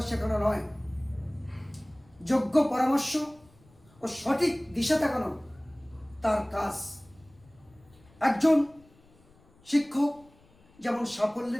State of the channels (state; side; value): noise; left; rumble, 29 dB below the sound